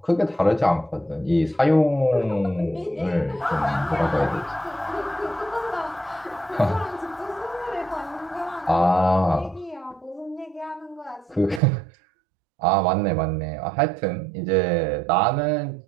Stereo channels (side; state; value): left; drops out; at 11.6 s